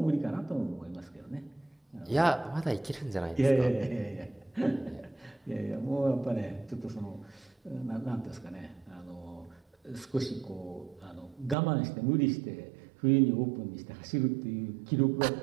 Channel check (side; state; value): left; drops out; at 11.6 s